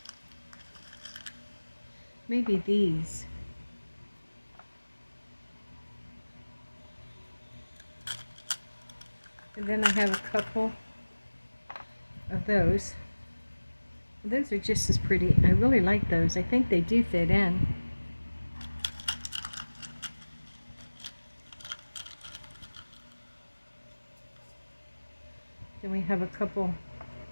maybe these. And then I have a couple of those. Those are just as pretty. I really like those. I think they do fit in. Then we have a couple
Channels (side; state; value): both; inverted; correlation -1.00